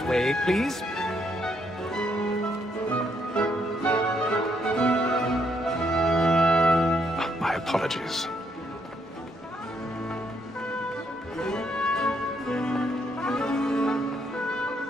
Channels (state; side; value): normal; both; correlation 0.74